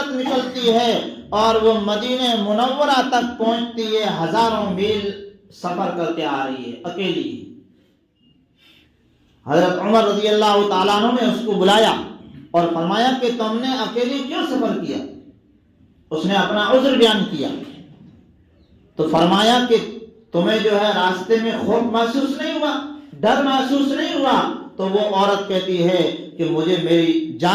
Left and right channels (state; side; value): identical; both; correlation 1.00